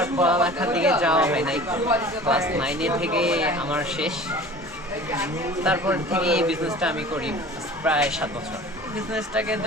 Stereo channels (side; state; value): both; normal; correlation 0.42